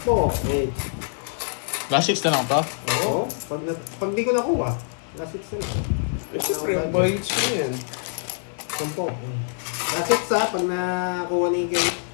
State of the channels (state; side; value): silent; right; 55 dB below the other